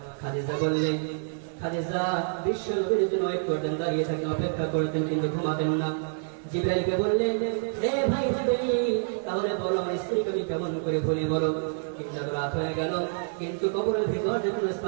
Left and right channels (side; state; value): left; silent; 58 dB below the other